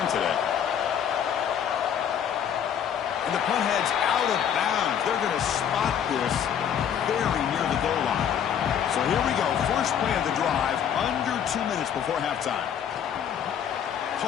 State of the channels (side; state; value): right; quieter; 8.7 dB